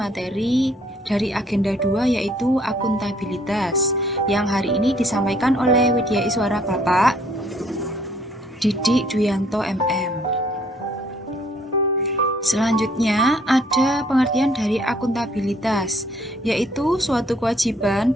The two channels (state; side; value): normal; both; correlation 0.63